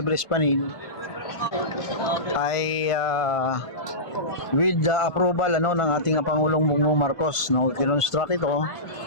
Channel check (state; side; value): late; right; 1.5 ms